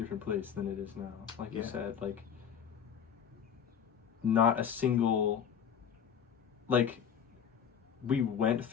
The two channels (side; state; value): right; quieter; 8.1 dB